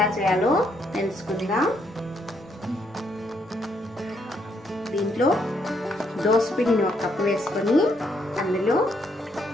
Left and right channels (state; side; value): normal; both; correlation 0.73